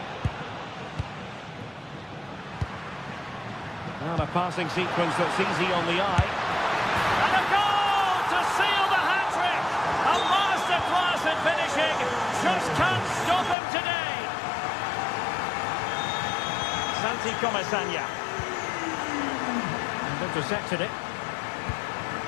And a passing sequence that's easy on the eye. And a goal to seal the hat-trick! A masterclass in finishing. Just can't stop him today. Santi Comesaña. And intercepted it.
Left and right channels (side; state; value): right; drops out; at 13.6 s